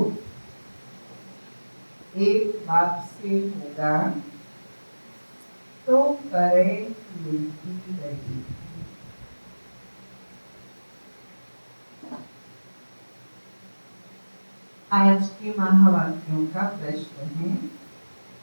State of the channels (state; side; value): inverted; both; correlation -1.00